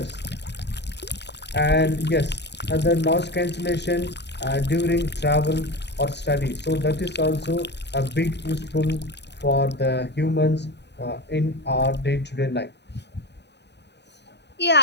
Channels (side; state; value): right; late; 0.50 ms